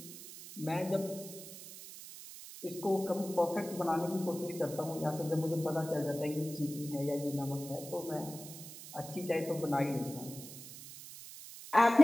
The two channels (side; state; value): right; noise; hiss, 14 dB below the sound